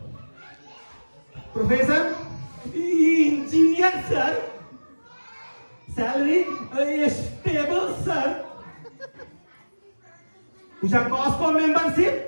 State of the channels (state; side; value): inverted; both; correlation -1.00